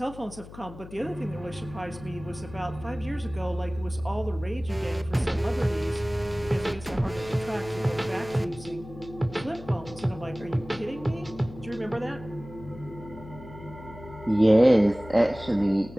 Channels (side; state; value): left; noise; hum, 16 dB below the sound